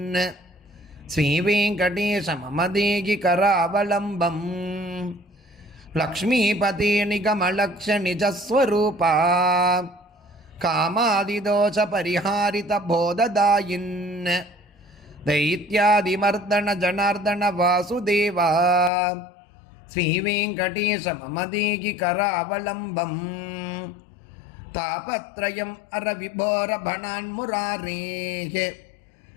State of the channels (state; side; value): drops out; right; at 18.9 s